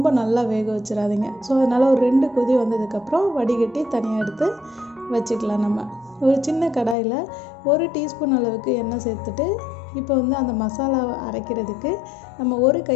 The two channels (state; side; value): drops out; right; at 7.0 s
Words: நல்லா வேக வச்சிடாதீங்க. ஸோ அதனால் ஒரு 2 கொதி வந்ததுக்கப்புறம் வடிகட்டி தனியாக எடுத்து வச்சுக்கலாம். நம்ம ஒரு சின்ன கடாயில் 1 டீஸ்பூன் அளவுக்கு எண்ணெய் சேர்த்துட்டு இப்போ அந்த மசாலாவை அரைக்கிறதுக்கு நம்ம 1